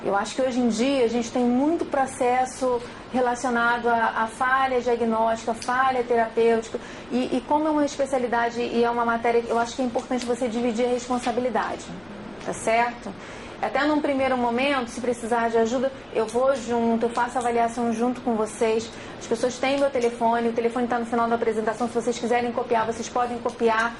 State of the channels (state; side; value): noise; left; rumble, 27 dB below the sound